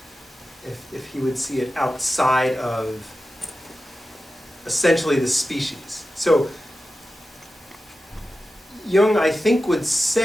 If he would see it outside of essentially the species. So Jung, I think, would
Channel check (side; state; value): both; normal; correlation 0.93